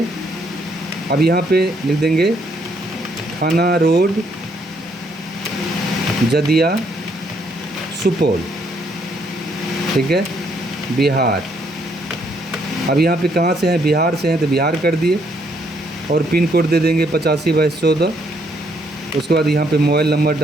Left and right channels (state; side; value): normal; both; correlation 0.70